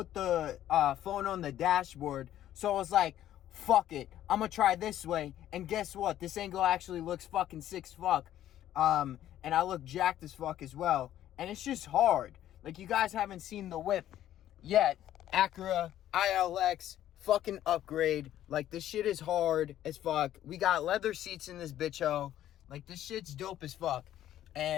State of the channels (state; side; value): quieter; right; 12.2 dB